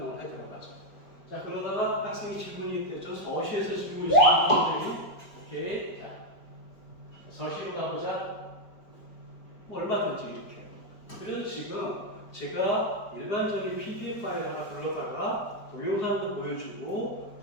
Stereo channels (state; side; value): late; right; 4.7 ms